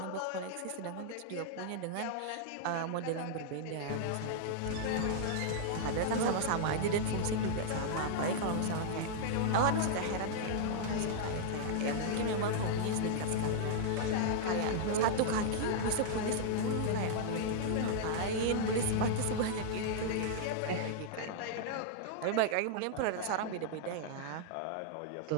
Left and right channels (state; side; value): different; both; correlation -0.01